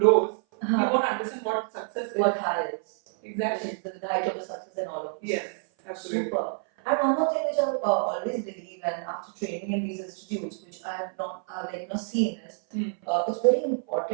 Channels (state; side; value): silent; left; 56 dB below the other